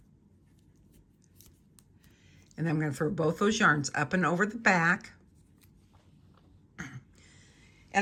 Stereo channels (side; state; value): both; identical; correlation 1.00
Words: And then I'm going to throw both those yarns up and over the back.